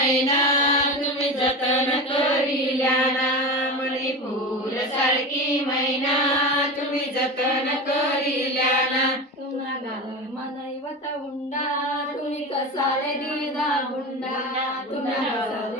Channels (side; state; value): both; normal; correlation 0.25